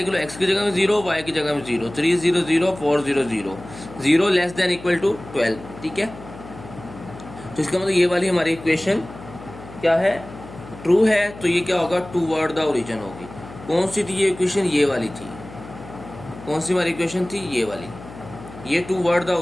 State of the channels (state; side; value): noise; left; hum, 16 dB below the sound